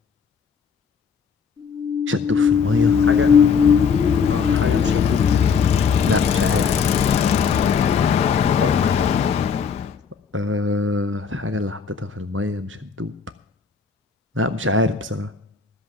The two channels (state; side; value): quieter; right; 6.1 dB